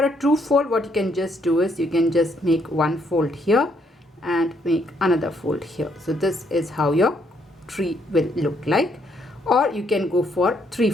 a 2-fold, what you can just do is you can just make 1 fold here and make another fold here. So this is how your tree will look like. Or you can go for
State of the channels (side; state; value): both; normal; correlation 0.71